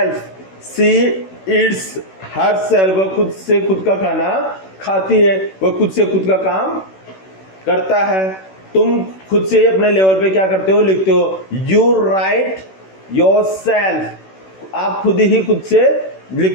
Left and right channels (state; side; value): late; right; 16 ms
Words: she eats herself। वह खुद से खुद का खाना खाती है, वह खुद से खुद का काम करता है। तुम खुद से अपने लेवल पे क्या करते हो, लिखते हो यू राइट योर सेल्फ, आप खुद ही खुद से